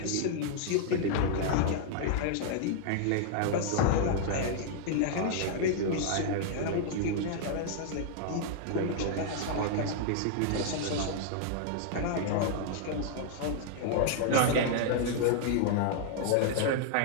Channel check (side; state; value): both; different; correlation -0.01